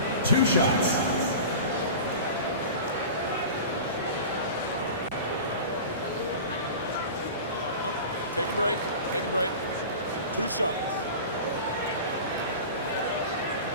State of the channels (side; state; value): both; inverted; correlation -0.34